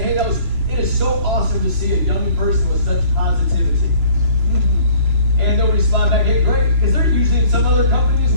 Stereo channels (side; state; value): left; late; 3.0 ms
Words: hey, it is so awesome to see a young person with such positivity. And they'll respond back, hey, great, because they're usually in some other company as